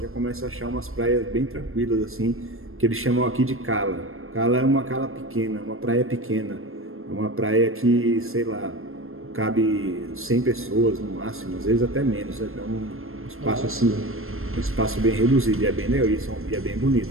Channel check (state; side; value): late; left; 0.61 ms